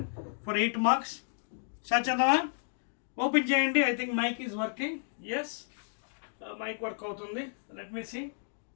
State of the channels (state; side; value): silent; right; digital silence